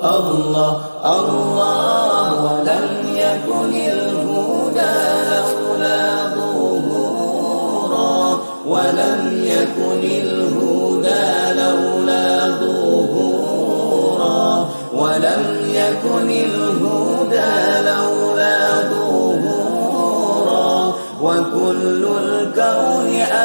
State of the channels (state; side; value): inverted; both; correlation -1.00